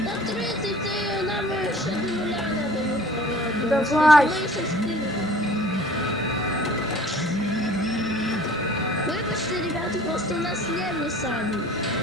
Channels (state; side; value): normal; both; correlation 0.49